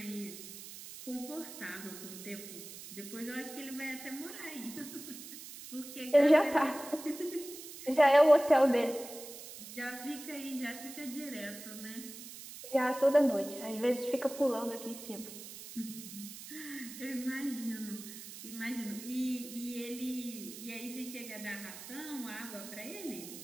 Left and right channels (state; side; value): noise; right; hiss, 13 dB below the sound